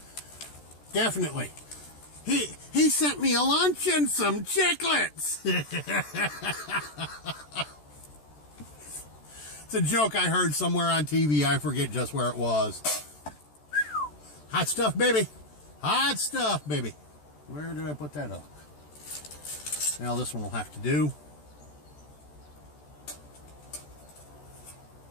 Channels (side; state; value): right; late; 14 ms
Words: Definitely. He sent me a lunch and some chiclets. It's a joke I heard somewhere on TV. I forget just where it was. Hot stuff, baby. Hot stuff, baby. Where did I put that hook? Now this one will have to do.